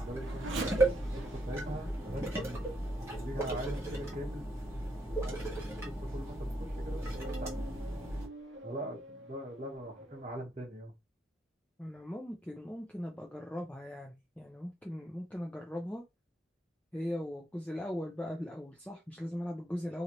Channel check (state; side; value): normal; both; correlation 0.78